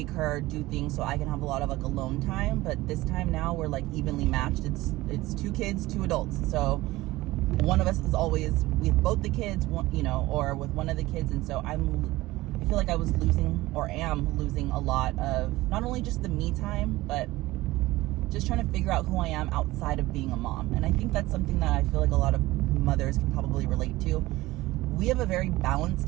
her, do things, so I can have a lot of, like, alone time. But this time now, we're, like, evenly matched. It's 2 kids, 2 adults. So one of us is always with both the kids, or with one of the kids. And so I feel like I was losing, or am losing, a lot of not only just the me time, but just trying to figure out who I am outside of being a mom. And I think that's something that I feel like a lot of mothers can probably relate to. We have a very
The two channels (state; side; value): quieter; left; 18.5 dB